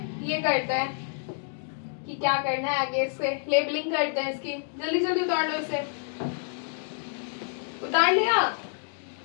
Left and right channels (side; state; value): right; silent; digital silence